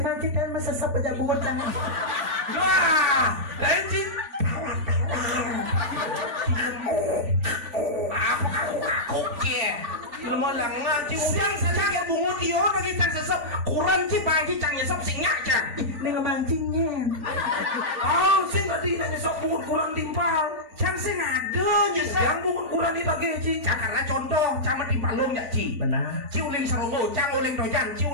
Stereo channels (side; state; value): left; late; 3.4 ms